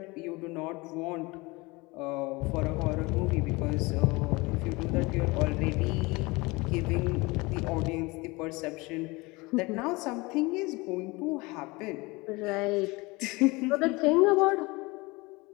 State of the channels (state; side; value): quieter; right; 24.1 dB